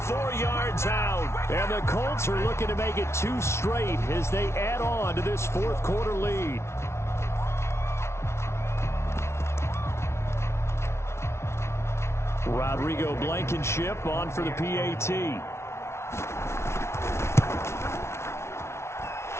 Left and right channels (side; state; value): right; late; 0.13 ms